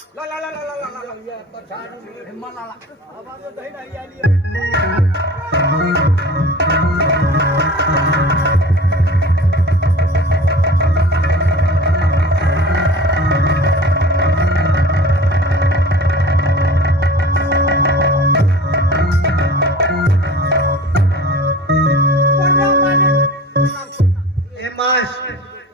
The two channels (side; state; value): both; normal; correlation 0.41